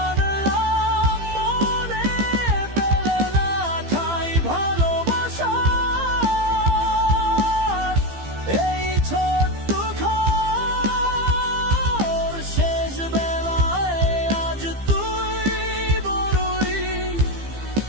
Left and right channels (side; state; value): left; late; 15 ms